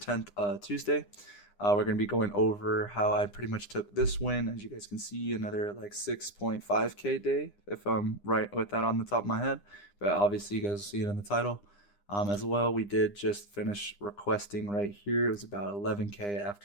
Tuesday. We're going to be going over how I pretty much took this win. As you guys can see, another like 6.5K day, if I'm right with that on the top of my head. But obviously, you guys see it in the title. As well, we did just finish requesting right here. It was about 11K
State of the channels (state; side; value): late; right; 9.9 ms